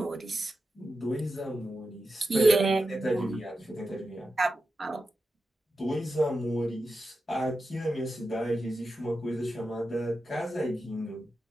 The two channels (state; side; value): normal; both; correlation 0.90